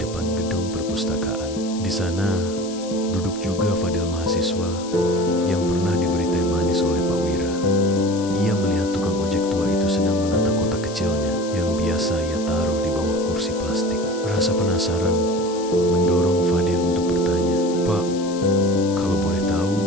gedung perpustakaan. Di sana, duduk juga Fadil, mahasiswa yang pernah diberi teh manis oleh Pak Wira. Ia melihat tukang ojek tua itu sedang menata kotak kecilnya yang biasa ia taruh di bawah kursi plastik. Rasa penasaran mendorong Fadil untuk bertanya, "Pak, kalau boleh tahu,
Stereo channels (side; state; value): left; noise; hiss, 15 dB below the sound